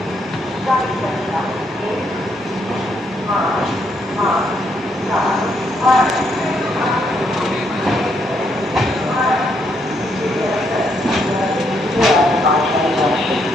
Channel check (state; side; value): normal; both; correlation 0.74